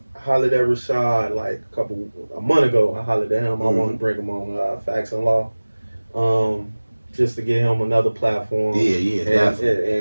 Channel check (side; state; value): both; inverted; correlation -1.00